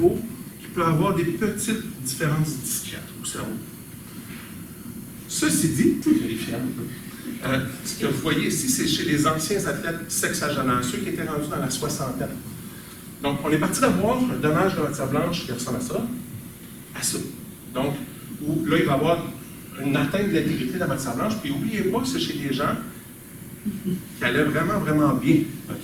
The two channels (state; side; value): identical; both; correlation 1.00